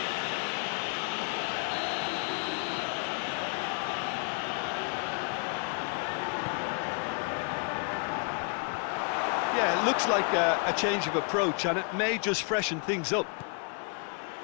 Yeah, it looks like a change of approach, and it may just freshen things up.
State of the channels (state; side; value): quieter; right; 38.8 dB